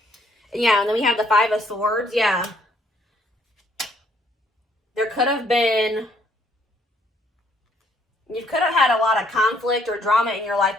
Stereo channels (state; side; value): normal; both; correlation 0.66